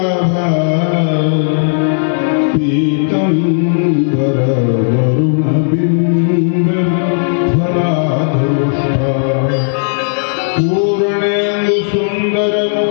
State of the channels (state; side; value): silent; right; digital silence